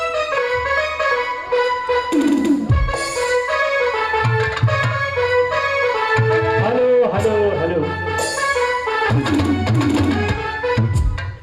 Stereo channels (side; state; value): both; identical; correlation 1.00